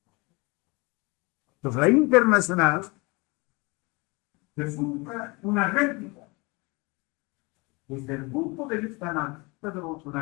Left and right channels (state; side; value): quieter; right; 26.9 dB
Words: Entonces, la internacional resulta una réplica desde el punto de vista analista